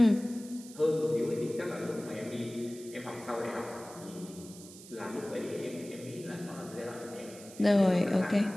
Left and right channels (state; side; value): noise; right; hiss, 17 dB below the sound